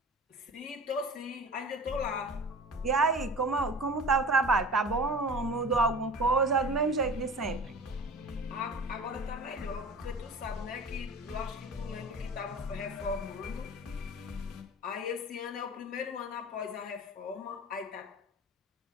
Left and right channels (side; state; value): both; normal; correlation 0.38